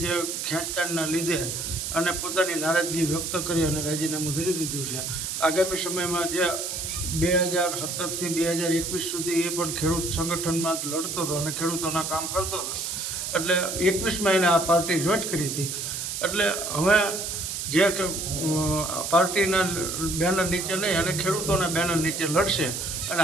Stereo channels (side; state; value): right; noise; hiss, 4 dB below the sound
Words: જે ખેંચતાણના લીધે અને પોતાની નારાજગી વ્યક્ત કરી અને રાજીનામું ધરી દીધું છે. આગામી સમયમાં જે 2017થી 2021 સુધી એ પણ ખેડૂત સંગઠનમાં લડતો હતો અને ખેડૂતોના કામ કરતો હતો. એટલે 21માં એને આ પાર્ટી જોઈન કરી હતી. એટલે હવે જે પાર્ટીના બેનર નીચે નહીં અને ખેડૂતોના બેનર નીચે લડશે અને